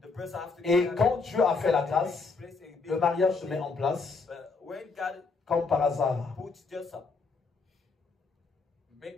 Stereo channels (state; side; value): quieter; right; 4.3 dB